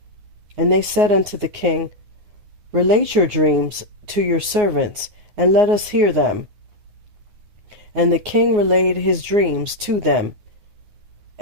And they said unto the king, Relate your dreams to your servants, and let us hear them. And the king relayed his dreams to them.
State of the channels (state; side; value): late; left; 9.6 ms